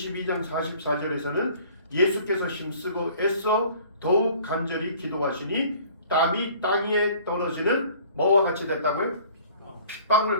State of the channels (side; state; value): both; inverted; correlation -0.51